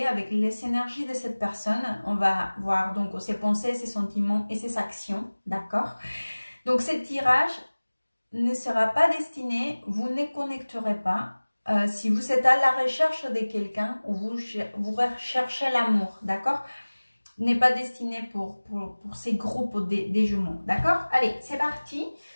avec les énergies de cette personne. On va voir donc ses pensées, ses sentiments et ses actions. D'accord? Donc, ce tirage ne sera pas destiné, vous ne connecterez pas. Si vous êtes à la recherche de quelqu'un ou vous recherchez l'amour. D'accord? N'est pas destiné pour ces groupes des jumeaux. D'accord? Allez, c'est parti.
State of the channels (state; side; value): inverted; both; correlation -1.00